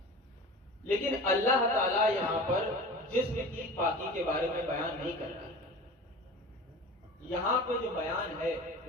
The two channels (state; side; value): normal; both; correlation 0.36